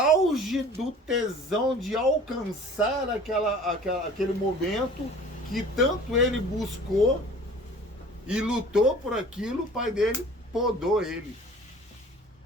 do tesão de alcançar aquele momento que tanto ele buscou e lutou por aquilo, o pai dele podou ele.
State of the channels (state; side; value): normal; both; correlation 0.46